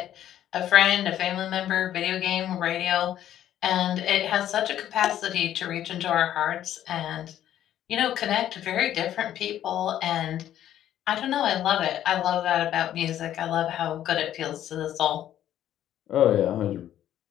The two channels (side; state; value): right; quieter; 11.6 dB